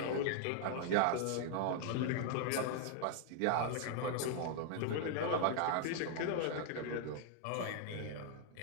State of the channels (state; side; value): different; both; correlation 0.00